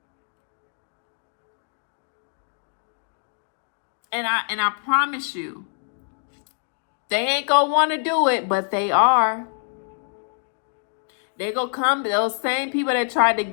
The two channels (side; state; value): right; silent; digital silence